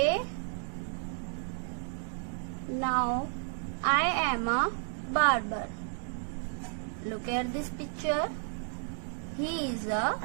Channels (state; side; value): silent; left; 56 dB below the other